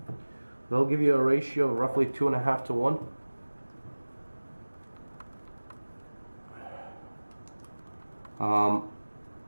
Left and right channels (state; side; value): inverted; both; correlation -1.00